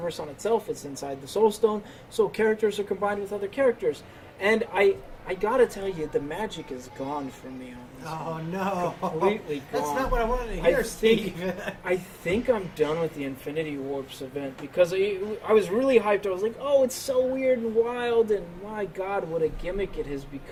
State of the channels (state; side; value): identical; both; correlation 1.00